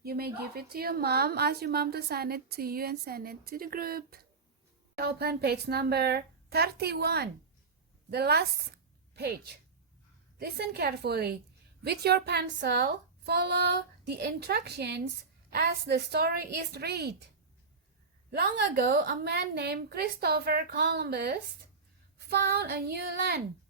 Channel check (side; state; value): left; quieter; 4.6 dB